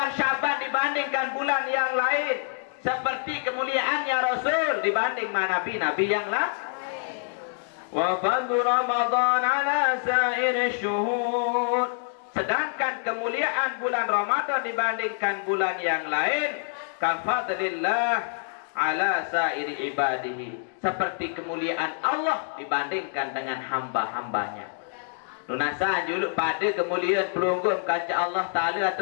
Syaban dibandingkan bulan yang lain. Seperti kemuliaannya Rasul dibanding nabi-nabi yang lain. Wa fadlu Ramadan ala sa'ir syuhur. Sedangkan kemuliaan bulan Ramadan dibandingkan bulan yang lain, kafadlillah ala sa'ir ibadihi. Seperti kemuliaan Allah dibandingkan dengan hamba-hambanya. Lunasan juluk pada kemuliaan pelunggung kaca Allah Ta'ala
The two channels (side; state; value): right; silent; digital silence